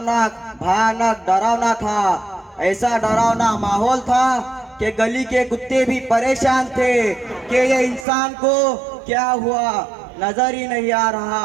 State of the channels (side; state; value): left; drops out; at 8.1 s